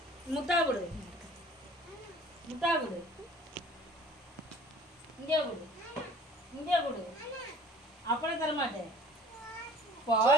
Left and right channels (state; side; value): normal; both; correlation 0.49